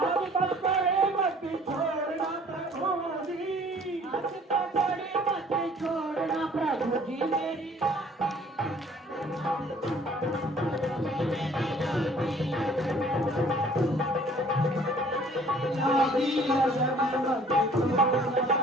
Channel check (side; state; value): both; normal; correlation 0.55